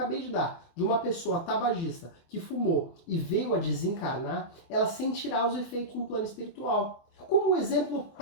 de dar, de uma pessoa tabagista que fumou e veio a desencarnar, ela sentirá os efeitos no plano espiritual. Como um exemplo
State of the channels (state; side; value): late; right; 24 ms